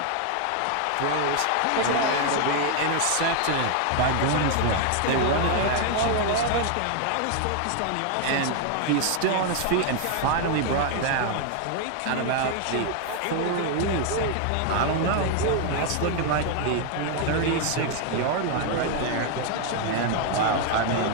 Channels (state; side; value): different; both; correlation 0.00